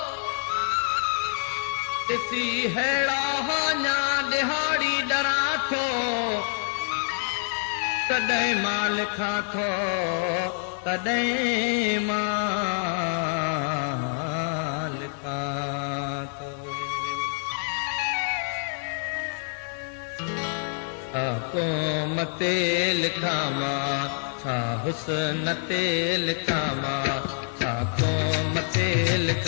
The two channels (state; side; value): silent; right; digital silence